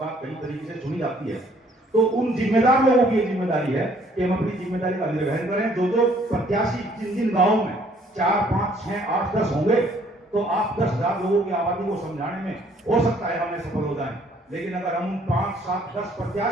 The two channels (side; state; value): both; normal; correlation 0.62